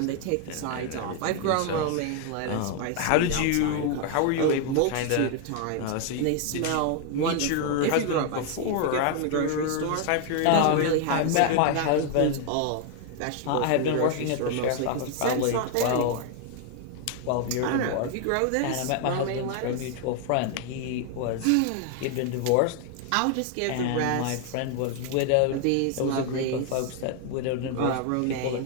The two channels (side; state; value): both; different; correlation 0.00